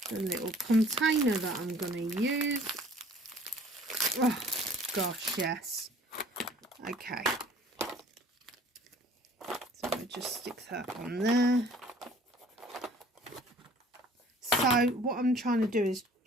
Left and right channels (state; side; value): normal; both; correlation 0.52